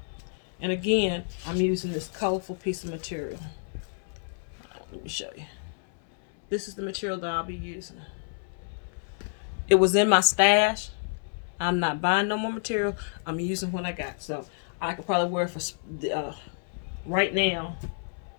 And again, I'm using this colorful piece of material. Let me show you. This is the material that I'll be using. It was in my stash. I'm not buying no more material. I'm using what I got. So I could probably wear it for right now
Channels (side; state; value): right; silent; 59 dB below the other